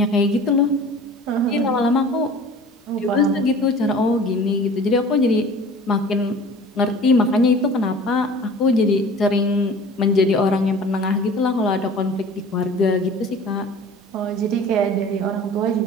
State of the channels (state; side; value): normal; both; correlation 0.43